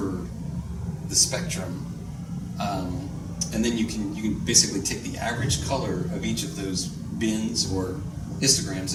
the spectrum, and then you can basically take the average color of each of those bins or histograms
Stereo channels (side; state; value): both; identical; correlation 1.00